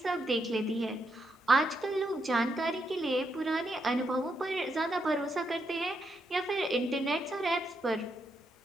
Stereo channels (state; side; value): normal; both; correlation 0.80